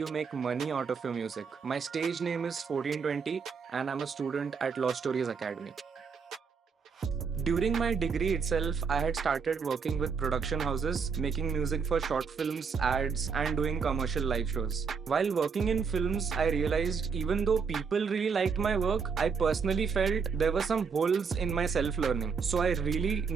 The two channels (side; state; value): left; quieter; 5.8 dB